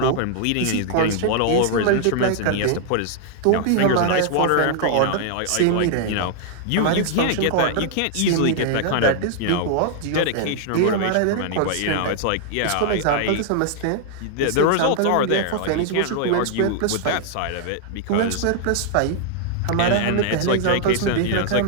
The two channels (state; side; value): different; both; correlation 0.00